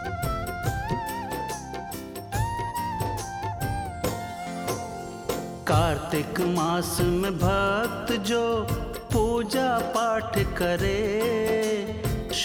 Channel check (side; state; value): both; identical; correlation 1.00